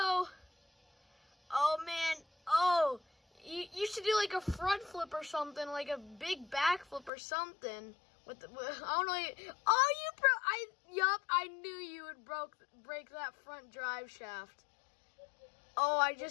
Oh, man. Oh, you should do like a front flip or something, like a big back flip or something. I don't know. Oh, I knew you would break that front drive shaft. Oh, I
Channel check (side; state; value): right; drops out; at 7.1 s